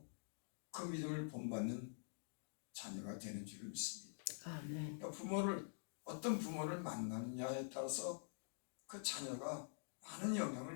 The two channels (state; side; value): silent; right; digital silence